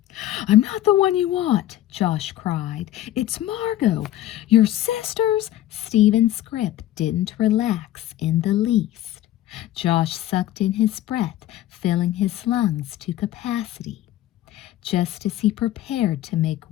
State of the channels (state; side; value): quieter; right; 13.6 dB